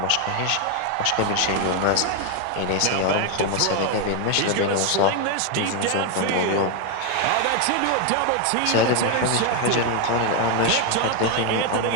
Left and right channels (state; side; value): different; both; correlation 0.01